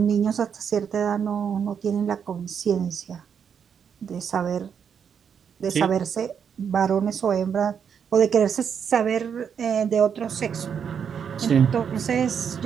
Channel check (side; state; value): left; quieter; 7.4 dB